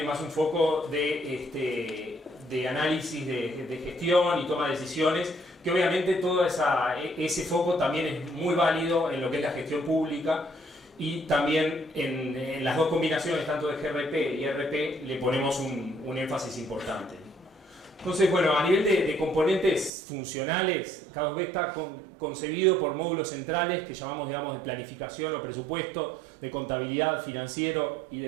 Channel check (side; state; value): left; drops out; at 19.9 s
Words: más un foco de análisis de gestión y toma de decisiones, que obviamente todo ese foco también es muy válido en lo que es la gestión pública, y también en las dos combinaciones, tanto de GRP y RP, le ponemos un énfasis importante. Entonces, bueno, a nivel de componentes funcionales, K2B está concebido por módulos centrales que llamamos, digamos, de planificación o presupuesto, de contabilidad, financiero y